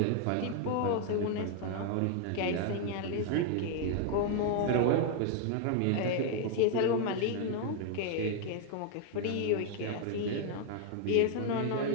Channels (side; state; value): both; different; correlation 0.00